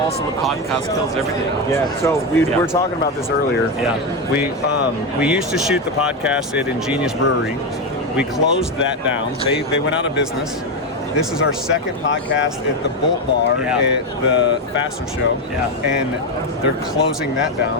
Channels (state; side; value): normal; both; correlation 0.11